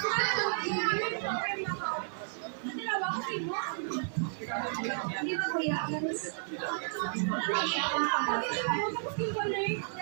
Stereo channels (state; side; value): silent; left; 56 dB below the other